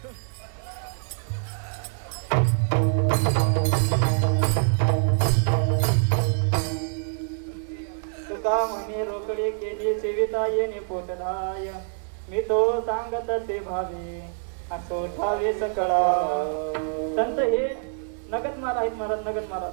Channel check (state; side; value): silent; left; 61 dB below the other